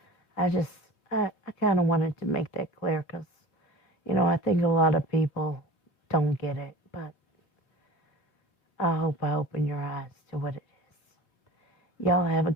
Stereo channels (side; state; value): right; late; 4.4 ms